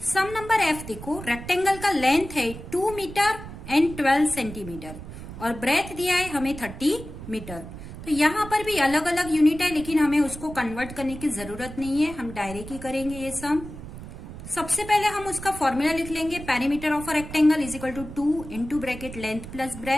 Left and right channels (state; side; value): noise; right; rumble, 12 dB below the sound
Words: सम नंबर एफ देखो, रेक्टेंगल का लेंथ है 2 मीटर एंड 12 सेंटीमीटर और ब्रेथ दिया है हमें 30 मीटर। तो यहां पर भी अलग अलग यूनिट है लेकिन हमें उसको कन्वर्ट करने की जरूरत नहीं है, हम डायरेक्ट ही करेंगे ये सम। सबसे पहले हम उसका फॉर्मूला लिख लेंगे, perimeter of a rectangle is equal to 2 into bracket length plus